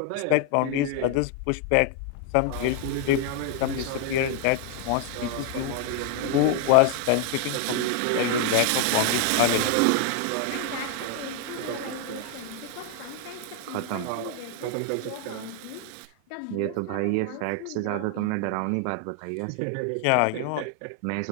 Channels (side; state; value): both; different; correlation 0.00